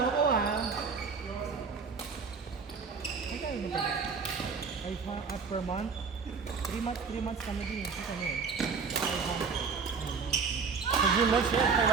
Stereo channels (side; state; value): left; quieter; 5.3 dB